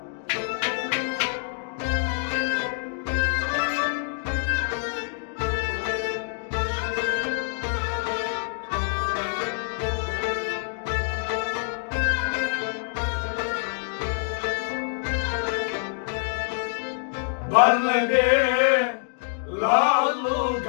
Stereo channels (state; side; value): silent; right; digital silence